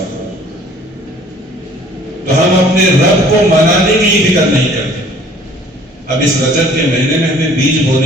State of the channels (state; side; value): normal; both; correlation 0.54